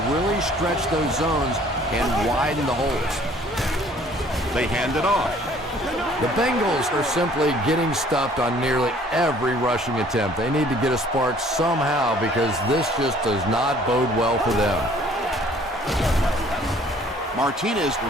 really stretch those zones and widen the holes. They hand it off. The Bengals are simply getting stuffed on nearly every rushing attempt. They need to get a spark somehow because this just does not bode well for them. Martinez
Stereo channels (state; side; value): normal; both; correlation 0.56